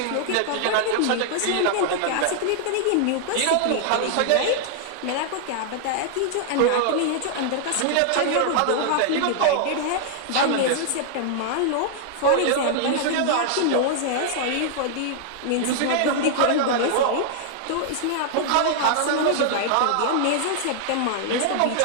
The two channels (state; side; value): different; both; correlation 0.00